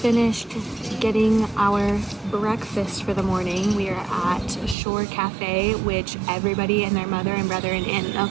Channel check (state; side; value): drops out; left; at 4.8 s